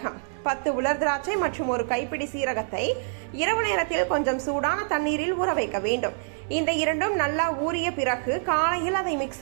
10 உலர் திராட்சை மற்றும் ஒரு கைப்பிடி சீரகத்தை இரவு நேரத்தில் கொஞ்சம் சூடான தண்ணீரில் ஊற வைக்க வேண்டும். இந்த இரண்டும் நல்லா ஊறிய பிறகு காலையில் அதை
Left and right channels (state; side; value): silent; left; digital silence